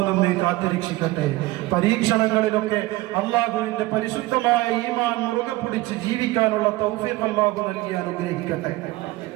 നമ്മെ കാത്തുരക്ഷിക്കട്ടെ. പരീക്ഷണങ്ങളിലൊക്കെ അള്ളാഹുവിന്റെ പരിശുദ്ധമായ ഈമാൻ മുറുകെ പിടിച്ച് ജീവിക്കാനുള്ള തൗഫീഖ് അള്ളാഹു നൽകി അനുഗ്രഹിക്കട്ടെ.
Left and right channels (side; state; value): left; quieter; 18.8 dB